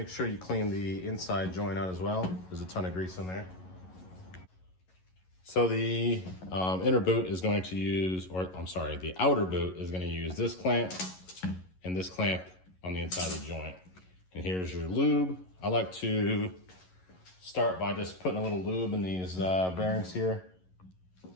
sure you clean the inside joint out as well. There's a ton of grease in there. So the inner boot is going to use, or I'm sorry, the outer boot is going to use this clamp and this clamp on the inside of the joint. And here's your lube. I like to start by just putting a little lube in these bearings here.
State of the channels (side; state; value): right; late; 11 ms